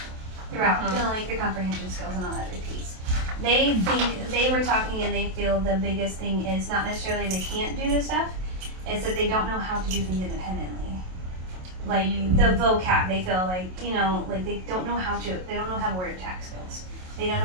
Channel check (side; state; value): left; late; 27 ms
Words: throughout. You know, like the comprehension skills and all that repeats. They think they were talking and they feel the biggest thing is not necessarily they can't do this stuff, it's that they don't know how to do things independently. Like the vocab, they feel like, you know, like they don't know how word attack skills. They don't